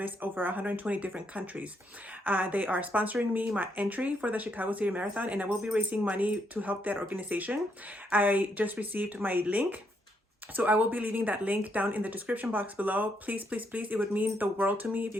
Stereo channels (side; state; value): both; normal; correlation 0.76